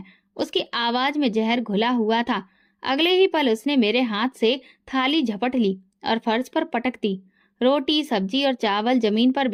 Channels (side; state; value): both; identical; correlation 1.00